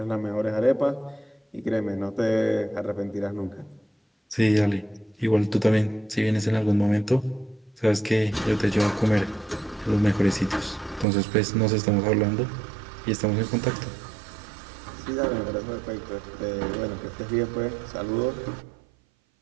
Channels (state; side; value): drops out; left; at 11.1 s